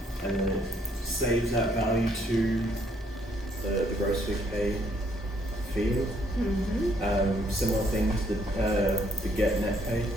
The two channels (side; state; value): both; normal; correlation 0.68